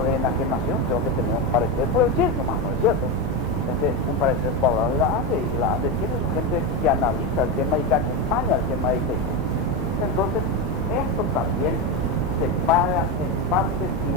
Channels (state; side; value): normal; both; correlation 0.13